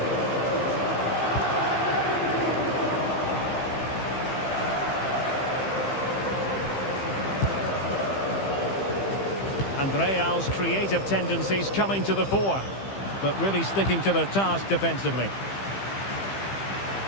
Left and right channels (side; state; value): right; late; 15 ms